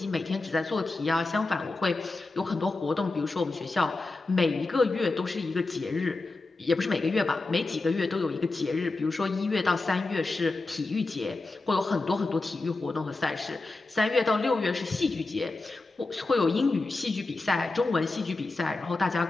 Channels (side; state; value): right; quieter; 3.4 dB